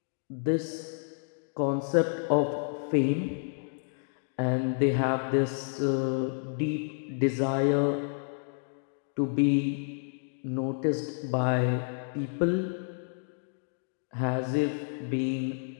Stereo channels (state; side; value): silent; right; digital silence